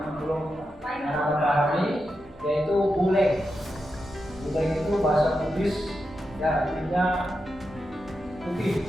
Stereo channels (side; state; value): both; normal; correlation 0.88